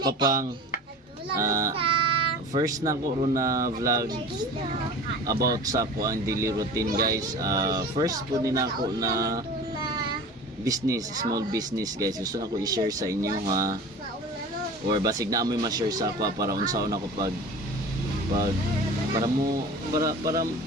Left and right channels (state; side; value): normal; both; correlation 0.38